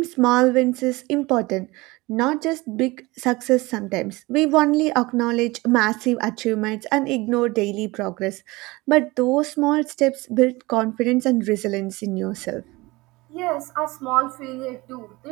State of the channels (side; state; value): left; quieter; 22.0 dB